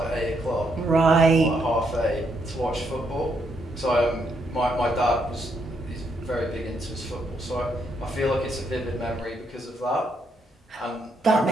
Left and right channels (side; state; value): both; normal; correlation 0.76